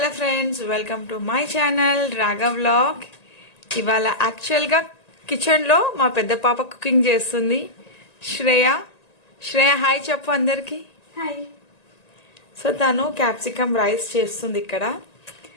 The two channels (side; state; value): right; late; 1.9 ms